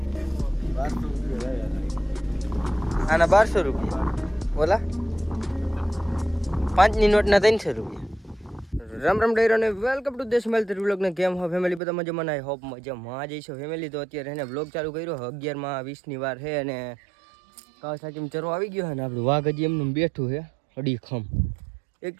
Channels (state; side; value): drops out; left; at 11.8 s